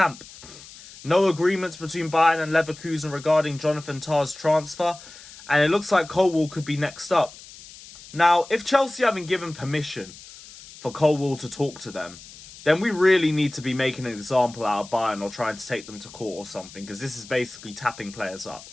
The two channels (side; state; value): left; noise; hiss, 18 dB below the sound